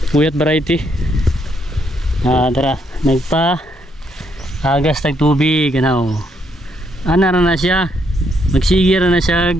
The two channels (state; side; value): normal; both; correlation 0.74